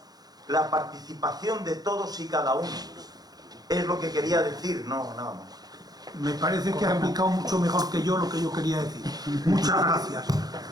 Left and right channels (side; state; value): left; late; 0.19 ms